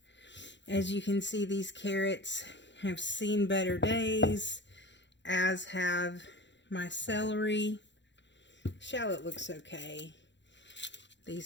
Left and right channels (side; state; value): right; late; 0.52 ms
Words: As you can see, these carrots have seen better days, as have my celery. Shallot looks okay.